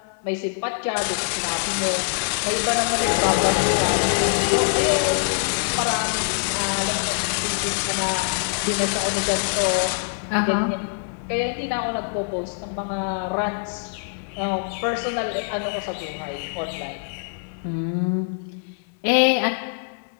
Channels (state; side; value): silent; right; 63 dB below the other